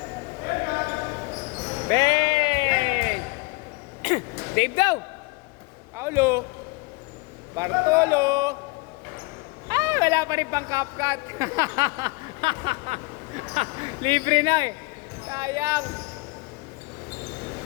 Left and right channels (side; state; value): right; quieter; 26.5 dB